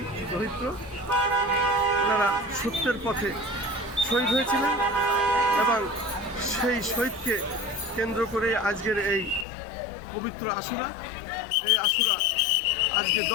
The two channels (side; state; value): right; drops out; at 9.5 s